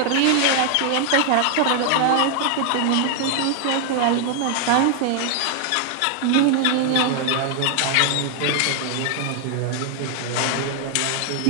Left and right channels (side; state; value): both; different; correlation 0.00